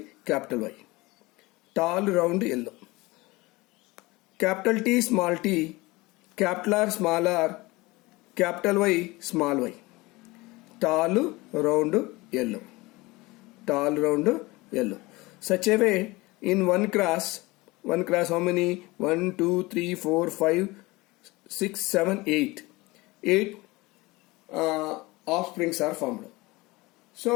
Tall round yellow. Capital T, capital R, small r, capital Y. Tall round yellow. Such a way, in one class, how many? 1, 2, 3, 4, 5, 6, 7, 8. 8 offsprings are formed.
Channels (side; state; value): right; quieter; 22.1 dB